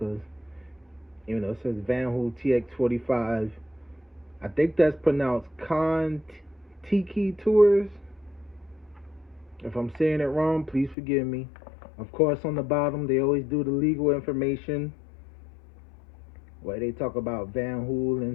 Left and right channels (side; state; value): right; drops out; at 11.0 s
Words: You know, it says Vanhool TX45. I think that's pronounced Contiki Tours. If I'm saying it wrong, please forgive me. Of course, on the bottom, they always do the legal information where they talk about Vanhool